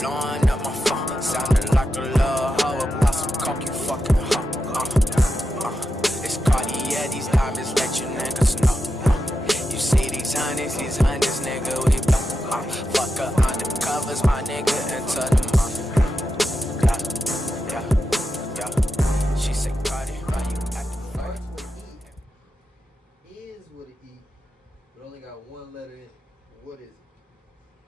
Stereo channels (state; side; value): normal; both; correlation 0.89